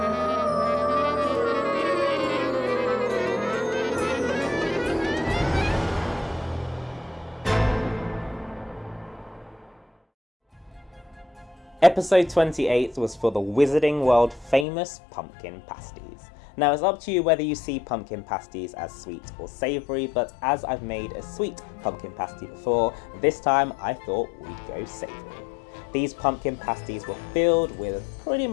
Episode 28 was for the Wizarding World famous pumpkin pasties. Now it's up to you whether you see pumpkin pasties as sweet or savoury, but as I've made a sweet pumpkin pasty before, this time I thought we'd go savoury. These pumpkin pasties were filled with pretty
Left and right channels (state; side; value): drops out; right; at 14.7 s